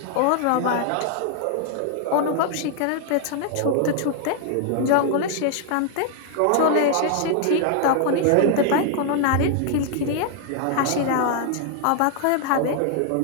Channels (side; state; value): both; different; correlation -0.01